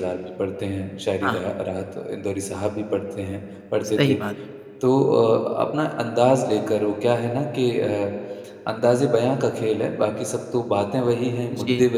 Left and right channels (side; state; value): both; identical; correlation 1.00